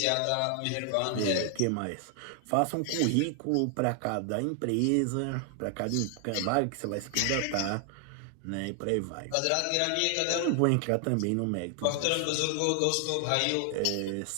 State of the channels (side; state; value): both; different; correlation 0.00